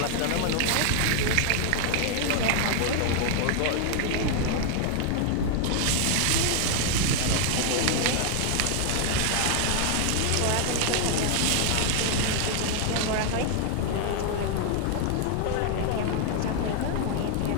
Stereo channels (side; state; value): both; different; correlation 0.00